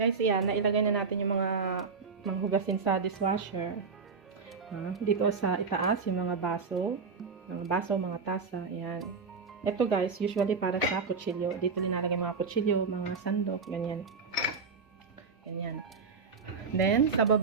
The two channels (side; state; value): left; quieter; 5.0 dB